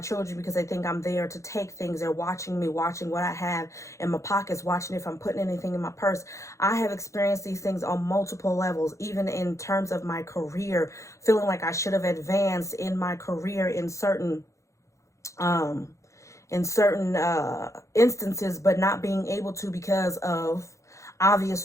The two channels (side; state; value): right; late; 0.15 ms